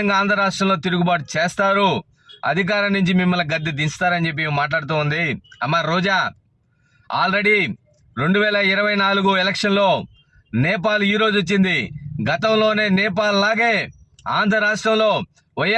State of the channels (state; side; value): identical; both; correlation 1.00